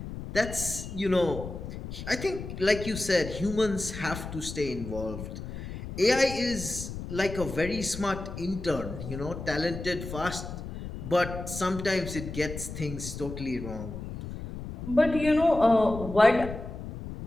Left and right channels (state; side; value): noise; left; rumble, 9 dB below the sound